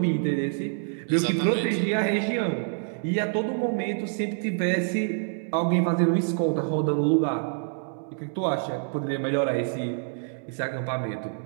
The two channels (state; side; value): silent; left; digital silence